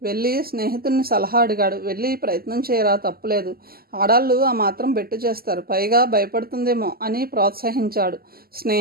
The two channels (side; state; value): left; late; 0.44 ms